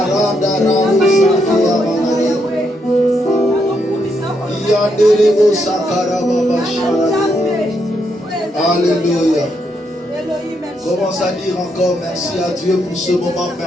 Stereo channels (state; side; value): normal; both; correlation 0.78